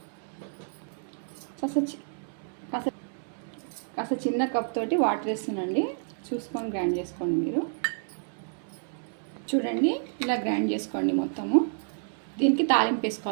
కాస్త చిన్న కప్ తోటి వాటర్ వేస్తున్నాండి, చూసుకొని గ్రైండ్ చేసుకోండి మీరు. చూడండి, ఇలా గ్రైండ్ చేసుకోండి మొత్తము. దీనికి తాలింపు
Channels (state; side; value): silent; left; 58 dB below the other